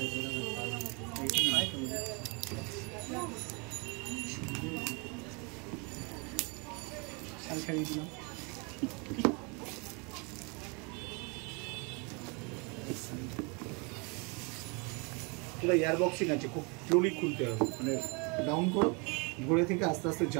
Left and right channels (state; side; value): quieter; left; 31.5 dB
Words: পুরো এয়ার বক্সিং আছে, খুব স্লোলি খুলতে হবে, মানে ডাউন করো, ঘুরে থেকে আস্তে আস্তে